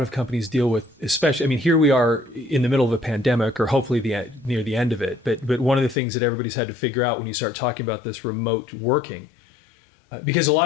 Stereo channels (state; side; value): drops out; right; at 6.0 s